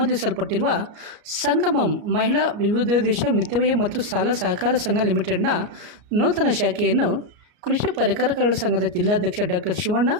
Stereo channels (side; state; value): left; late; 34 ms